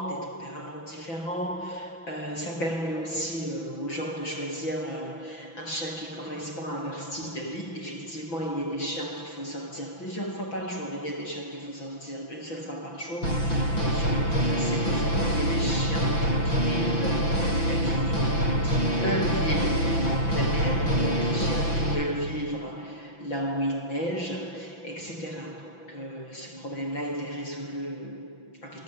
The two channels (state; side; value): late; right; 6.0 ms